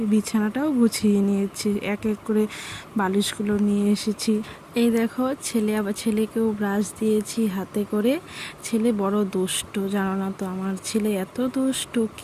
বিছানাটাও গুছিয়ে নিয়েছি, এক এক করে বালিশগুলো নিয়ে এসেছি। এই দেখো, ছেলেকেও ব্রাশ দিয়েছি হাতে করে। ছেলে বড় দুষ্ট, জানো না তো, আমার ছেলে এত দুষ্ট,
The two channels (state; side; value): identical; both; correlation 1.00